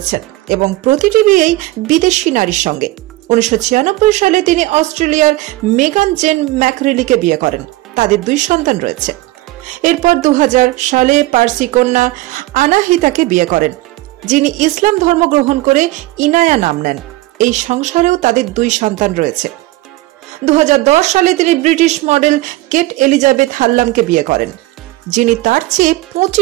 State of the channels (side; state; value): left; quieter; 18.8 dB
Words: এবং প্রতিটি বিয়েই বিদেশি নারীর সঙ্গে। 1996 সালে তিনি অস্ট্রেলিয়ার মেগান জেন ম্যাকরেলিকে বিয়ে করেন। তাদের 2 সন্তান রয়েছে। এরপর 2000 সালে পার্সি কন্যা আনাহিতাকে বিয়ে করেন, যিনি ইসলাম ধর্ম গ্রহণ করে ইনায়া নাম নেন। এই সংসারেও তাদের 2 সন্তান রয়েছে। 2010 সালে তিনি ব্রিটিশ মডেল কেট এলিজাবেথ হাল্লামকে বিয়ে করেন, যিনি তার চেয়ে